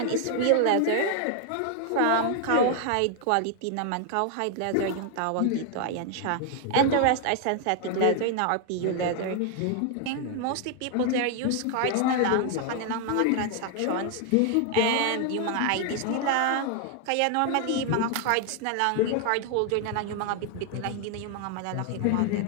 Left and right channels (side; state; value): both; different; correlation 0.00